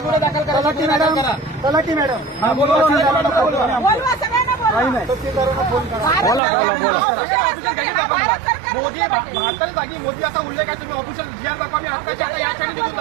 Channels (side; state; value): left; drops out; at 6.4 s